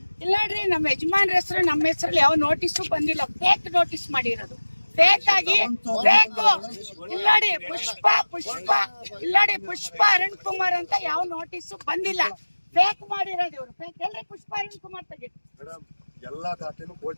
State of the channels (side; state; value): both; inverted; correlation -1.00